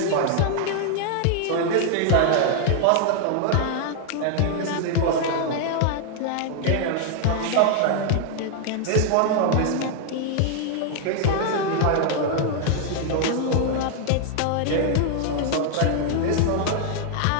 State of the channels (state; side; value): different; both; correlation 0.00